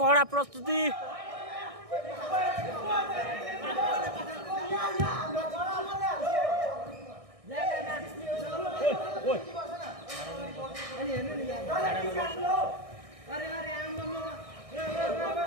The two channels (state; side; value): late; left; 1.6 ms